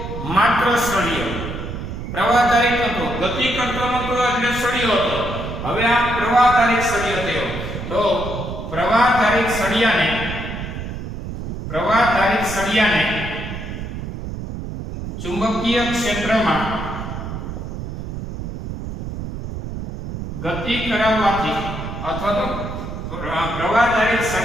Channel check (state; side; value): noise; right; rumble, 7 dB below the sound